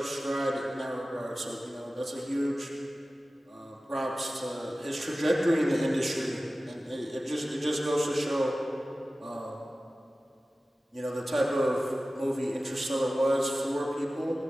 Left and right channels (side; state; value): both; normal; correlation 0.96